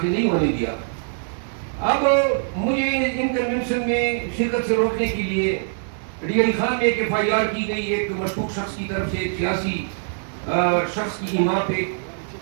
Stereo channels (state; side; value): silent; left; 61 dB below the other